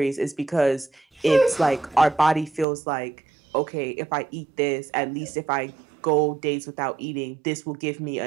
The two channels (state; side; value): drops out; left; at 2.7 s